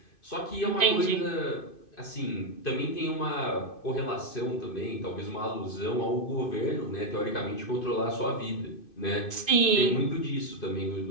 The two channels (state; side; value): late; right; 2.5 ms